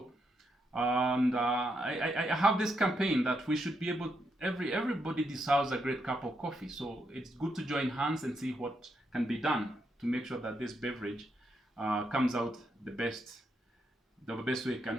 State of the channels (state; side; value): normal; both; correlation 0.80